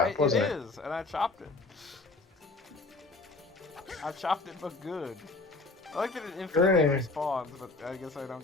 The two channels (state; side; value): quieter; right; 3.4 dB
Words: wasn't it? It is, and I chopped it. I chopped it, but good. I like that it infinitely Hooray. respawns, but I guess I don't